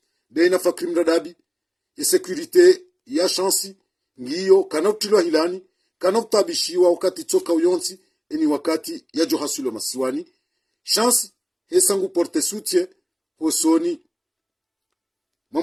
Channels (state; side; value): identical; both; correlation 1.00